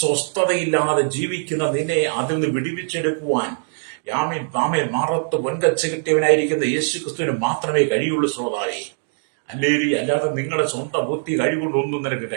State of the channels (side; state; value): left; silent; digital silence